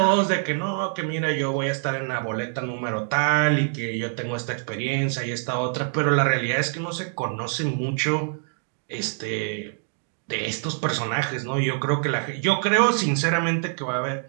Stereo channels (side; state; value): left; silent; digital silence